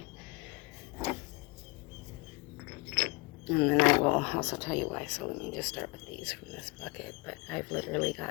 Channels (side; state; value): right; quieter; 27.6 dB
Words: and then I will also tell you why. So let me just start with these from this bucket, but I've literally